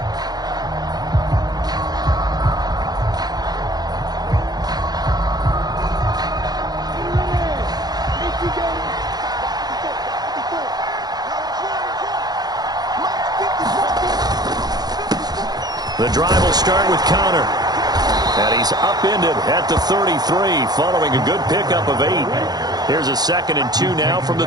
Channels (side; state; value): left; late; 0.19 ms